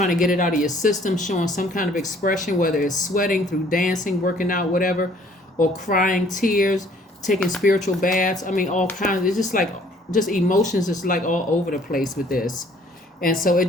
to get it out of your system, showing some kind of expression, whether it's sweating through dancing, working out, whatever, or crying tears, taking spiritual baths. I mean, all kinds. It's just emotions is like all over the place with this. And so it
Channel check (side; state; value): both; normal; correlation 0.58